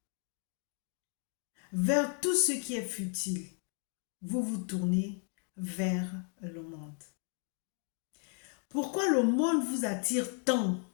Vers tout ce qui est futile, vous vous tournez vers le monde. Pourquoi le monde vous attire tant,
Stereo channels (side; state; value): right; quieter; 39.6 dB